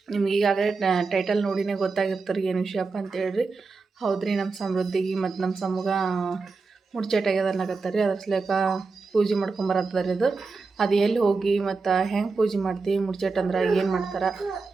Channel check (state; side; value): quieter; left; 4.3 dB